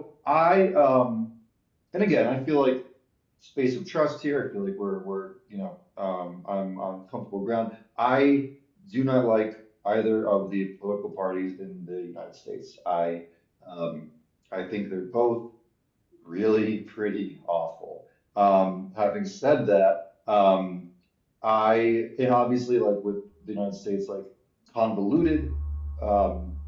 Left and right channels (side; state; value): both; identical; correlation 1.00